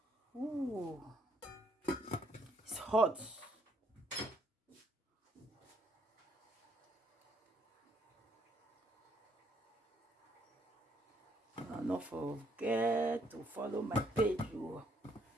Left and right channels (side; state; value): both; normal; correlation 0.69